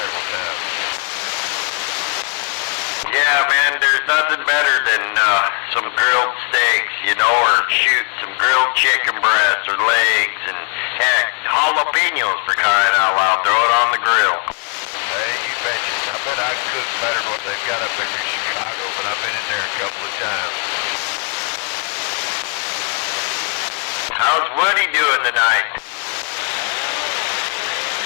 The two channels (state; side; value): quieter; right; 35.1 dB